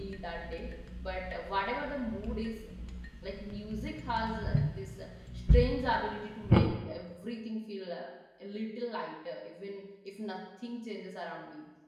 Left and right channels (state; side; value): identical; both; correlation 1.00